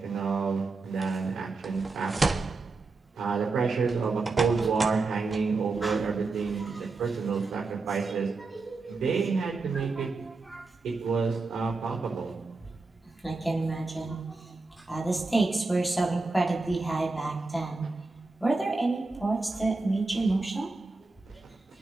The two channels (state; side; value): quieter; left; 3.7 dB